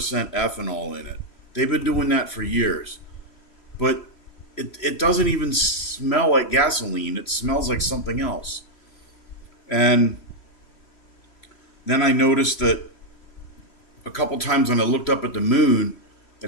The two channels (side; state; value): right; late; 3.0 ms